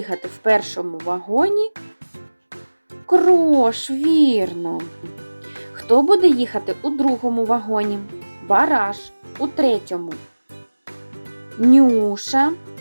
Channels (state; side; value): inverted; both; correlation -1.00